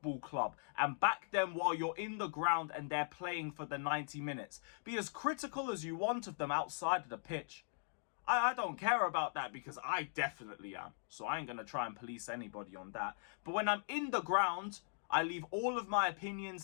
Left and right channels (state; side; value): silent; right; digital silence